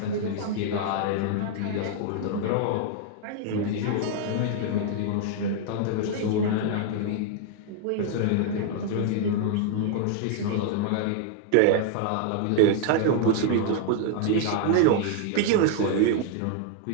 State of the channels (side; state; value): both; different; correlation 0.00